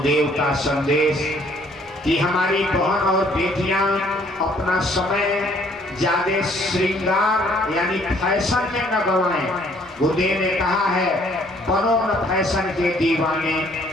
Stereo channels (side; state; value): both; normal; correlation 0.62